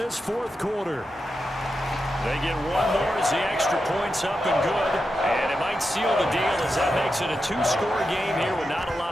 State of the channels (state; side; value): normal; both; correlation 0.88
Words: 4th quarter. They get one more as the extra point's up and good. And it might seal the deal as that makes it a 2-score game here with not a